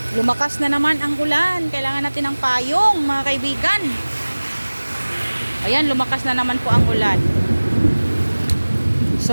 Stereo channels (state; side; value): inverted; both; correlation -1.00